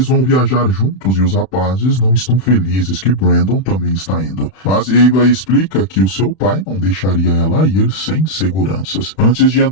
vão viajar juntos e os rapazes não estão felizes que Brandon também está indo. Mas Ava explica que o seu pai não deixaria ela ir sem seguranças. Antes de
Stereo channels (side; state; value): right; late; 31 ms